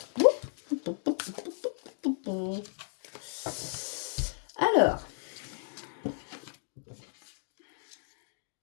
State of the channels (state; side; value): silent; right; digital silence